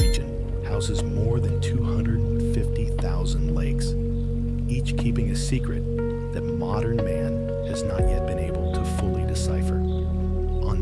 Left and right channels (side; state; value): both; identical; correlation 1.00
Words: houses more than 250,000 lakes, each keeping a secret that modern man has not yet been able to fully decipher?